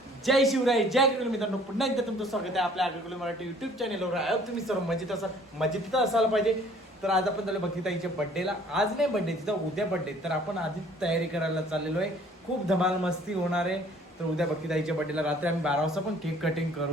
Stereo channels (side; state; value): both; normal; correlation 0.56